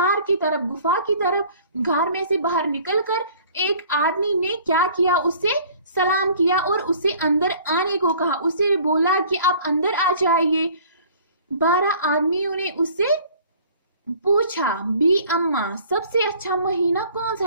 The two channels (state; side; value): inverted; both; correlation -0.51